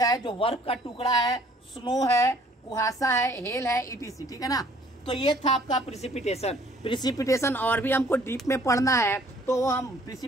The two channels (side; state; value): both; normal; correlation 0.58